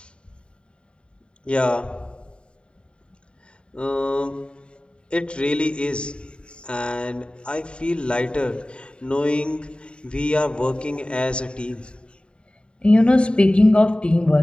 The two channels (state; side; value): late; right; 0.053 ms